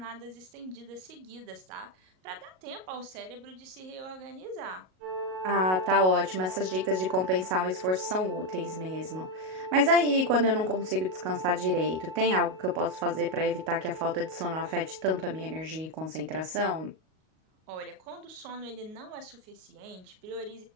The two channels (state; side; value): late; left; 38 ms